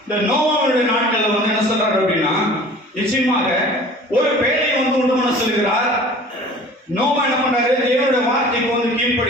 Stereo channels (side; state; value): both; normal; correlation 0.45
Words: இந்த நோவாவுடைய நாட்கள்ல வந்து என்ன சொல்றாரு அப்படின்னா நிச்சயமாக ஒரு பேழையை வந்து உண்டு பண்ண சொல்கிறார். நோவா என்ன பண்றாரு? தேவனுடைய வார்த்தைக்கு வந்து